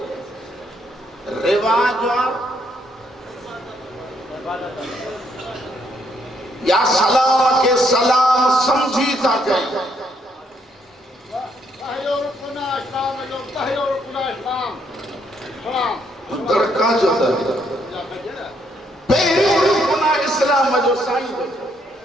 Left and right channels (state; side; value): normal; both; correlation 0.71